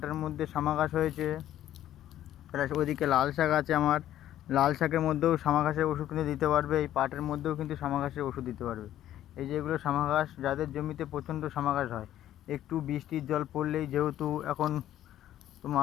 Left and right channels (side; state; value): right; quieter; 12.4 dB